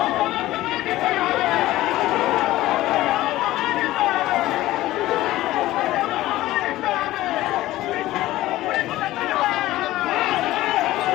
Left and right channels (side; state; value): right; quieter; 16.2 dB